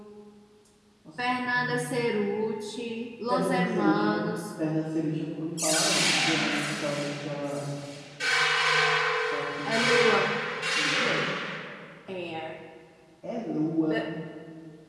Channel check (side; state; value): both; identical; correlation 1.00